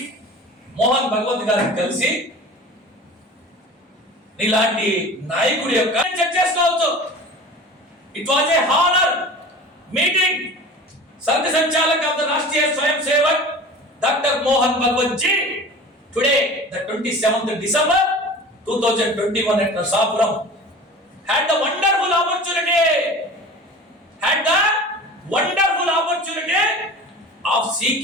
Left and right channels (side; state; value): both; normal; correlation 0.38